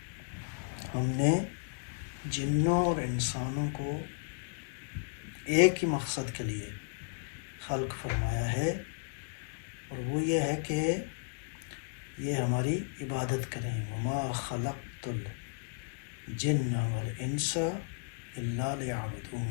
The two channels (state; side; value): silent; right; digital silence